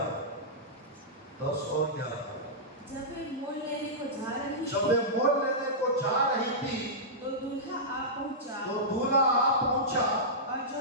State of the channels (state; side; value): normal; both; correlation -0.14